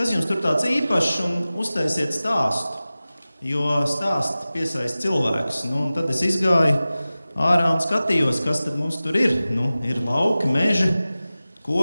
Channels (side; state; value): both; inverted; correlation -0.96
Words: jums tur tāds īpašs, un uztaisiet stāstu, jo stāsti piesaista cilvēkus. Un tad es izgāju ārā un skatījos, kas tad mums tur ir. Ir lauki, meži,